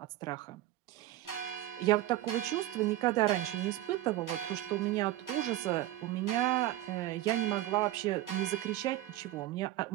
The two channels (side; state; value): left; quieter; 14.9 dB